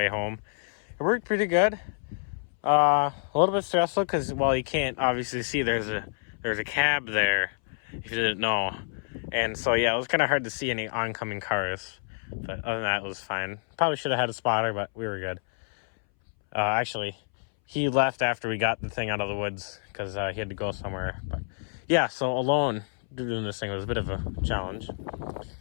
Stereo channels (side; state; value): right; silent; 59 dB below the other